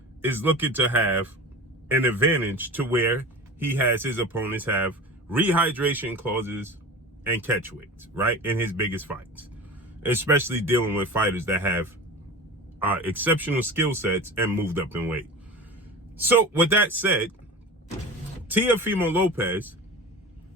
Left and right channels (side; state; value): both; normal; correlation 0.34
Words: is looking to have an advantage to where he has his opponents have rehydration clauses and catchweights, right, in his biggest fights, especially dealing with fighters that have exceptional skill sets and moved up in weight. So with that said, Teofimo Lopez,